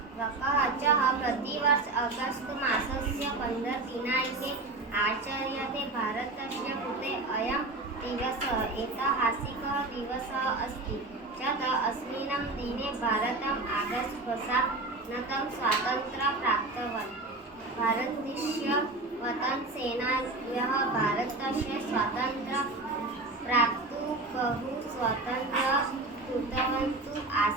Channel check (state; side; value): quieter; left; 3.1 dB